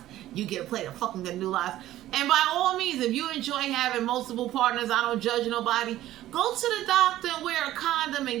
you get a plate of fucking gandulas. And by all means, if you enjoy having multiple partners, I don't judge nobody, go to the doctor and wear a condom and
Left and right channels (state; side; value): quieter; left; 14.1 dB